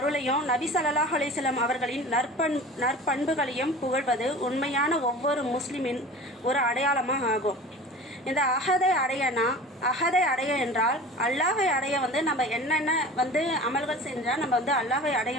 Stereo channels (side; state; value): both; normal; correlation 0.38